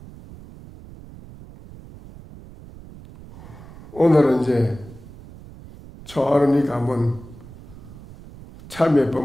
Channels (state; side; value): noise; right; rumble, 18 dB below the sound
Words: 오늘은 이제 초하루니까 한번 참회